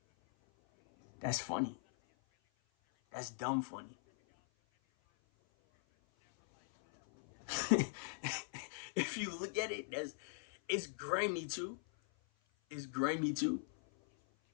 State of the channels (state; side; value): silent; right; 51 dB below the other